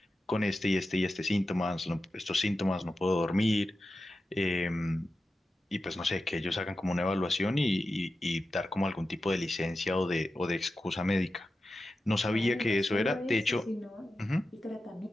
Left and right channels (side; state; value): both; normal; correlation 0.92